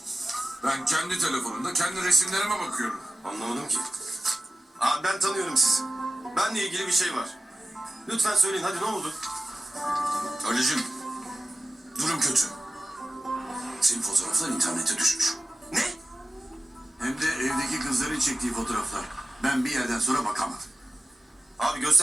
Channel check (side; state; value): both; normal; correlation 0.94